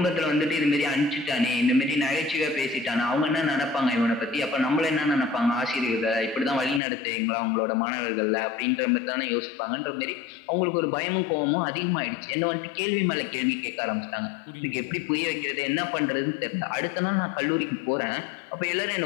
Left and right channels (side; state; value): right; drops out; at 6.8 s